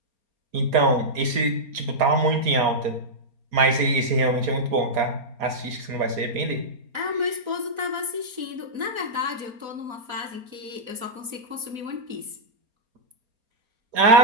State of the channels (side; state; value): left; late; 4.3 ms